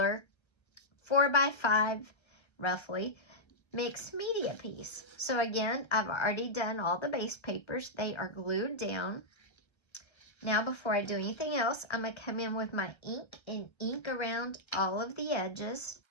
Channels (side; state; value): right; late; 1.3 ms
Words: 4x5, roughly, mixed media piece. So again, I've already done all the base papers. They are glued down. Now before I do anything else, I'm going to come in with my ink and ink around all of the edges.